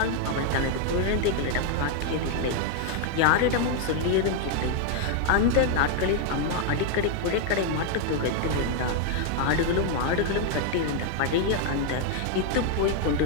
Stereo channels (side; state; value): both; different; correlation 0.00